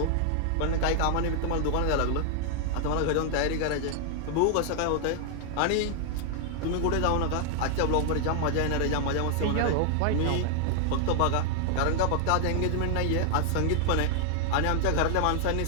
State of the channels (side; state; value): both; different; correlation 0.00